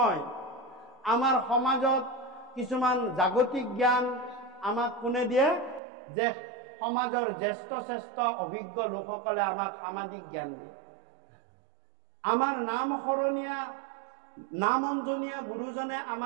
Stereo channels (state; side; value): drops out; left; at 5.8 s